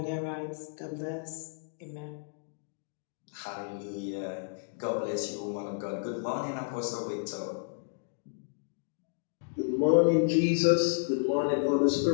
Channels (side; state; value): right; silent; digital silence